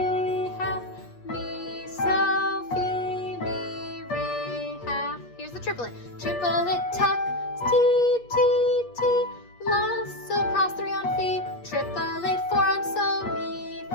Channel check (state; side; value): late; right; 8.4 ms